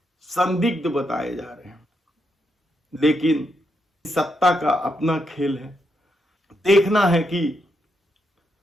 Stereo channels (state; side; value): normal; both; correlation 0.81